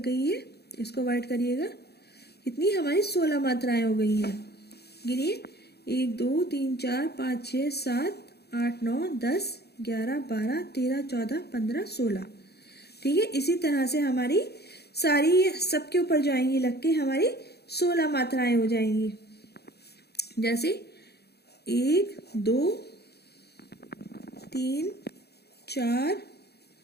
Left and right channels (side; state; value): right; late; 0.47 ms